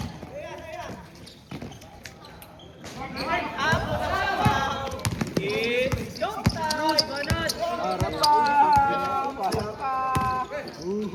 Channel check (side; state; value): both; identical; correlation 1.00